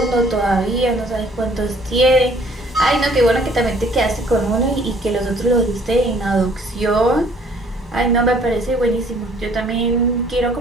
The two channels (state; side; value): normal; both; correlation 0.58